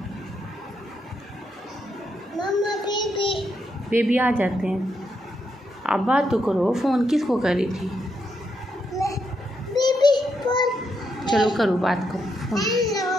मम्मा बेबी आ जाते हैं। आप बात तो करो, फ़ोन किसको कर रही थी? Baby phone. चलो करो, बात करो फ़ोन। हेलो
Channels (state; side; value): normal; both; correlation 0.80